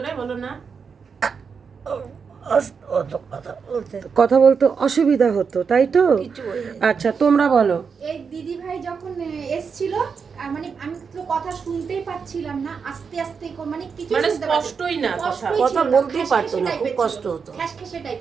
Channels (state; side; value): quieter; left; 5.9 dB